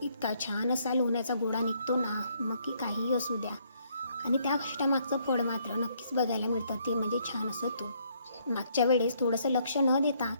इतका छान असा लोण्याचा गोळा निघतो ना, मग की काहीही असू द्या. आणि त्या कष्टामागचं फळ मात्र नक्कीच बघायला मिळतं, ते म्हणजे छान असं तूप. मागच्या वेळेस थोडंसं लक्ष न देता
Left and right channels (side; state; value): both; inverted; correlation -0.69